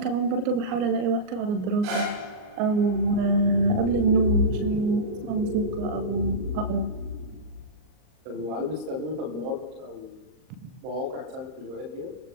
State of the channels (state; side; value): late; left; 38 ms